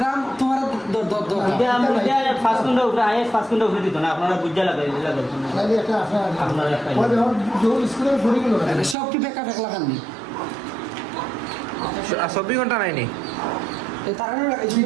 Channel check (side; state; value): left; drops out; at 9.0 s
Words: তোমার দর ये हम क्या 5 घंटा ऊपर आए 5 घंटा ऊपर दी तो ना अपना बुझा लगा তাহলে একটা আপনারা ওই ধর যে স্কুলে পড়ে গেল সব কি বেকার এক লাগান নি 24 ঘন্টা নাই নি এই তারা